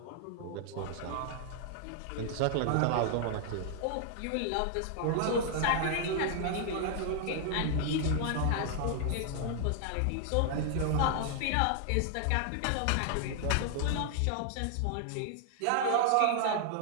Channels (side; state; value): both; different; correlation 0.00